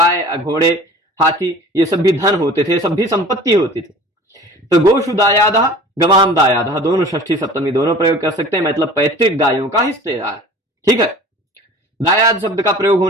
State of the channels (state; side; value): normal; both; correlation 0.43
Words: घोड़े हाथी, ये सब भी धन होते थे, सब भी संपत्ति होती थी। तो गोशु दायादः, गवाम दायादः, दोनों षष्ठी सप्तमी दोनों प्रयोग कर सकते हैं, मतलब पैतृक गायों का हिस्सेदार। ठीक है, दायाद शब्द का प्रयोग